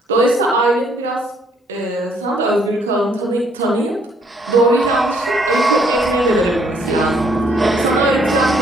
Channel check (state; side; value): normal; both; correlation 0.66